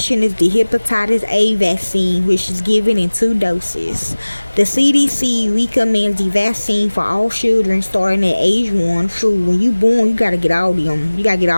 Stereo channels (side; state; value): both; inverted; correlation -1.00